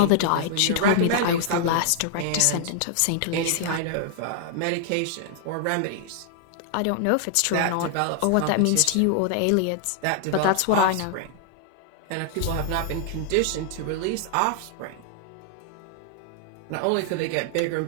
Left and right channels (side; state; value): both; different; correlation -0.01